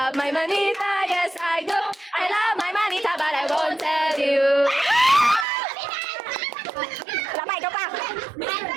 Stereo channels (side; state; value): left; drops out; at 5.5 s